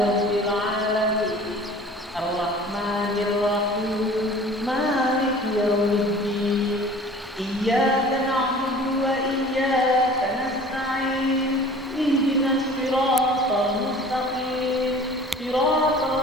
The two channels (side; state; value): both; normal; correlation 0.45